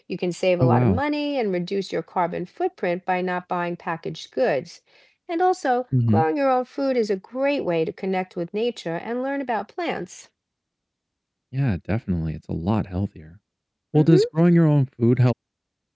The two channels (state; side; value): identical; both; correlation 1.00